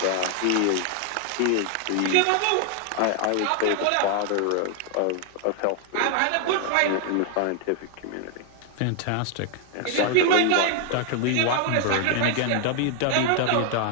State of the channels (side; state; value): both; different; correlation 0.00